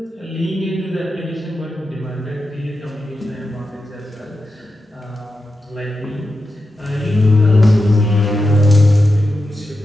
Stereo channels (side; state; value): both; normal; correlation 0.90